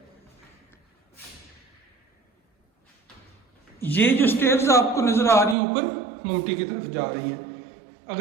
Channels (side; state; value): left; drops out; at 5.6 s